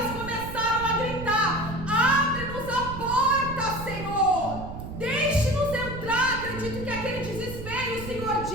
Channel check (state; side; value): noise; right; rumble, 9 dB below the sound